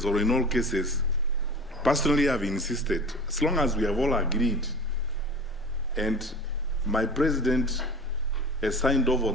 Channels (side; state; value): both; normal; correlation 0.38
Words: or in all cases, personally I've insisted, as long as we have all agreed and my president has signed off